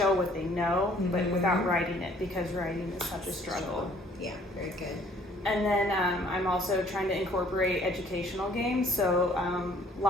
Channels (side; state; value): both; normal; correlation 0.58